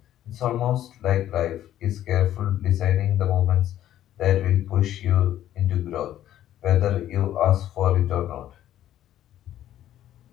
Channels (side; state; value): right; quieter; 12.2 dB